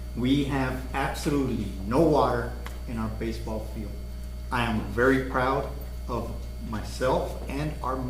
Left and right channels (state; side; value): identical; both; correlation 1.00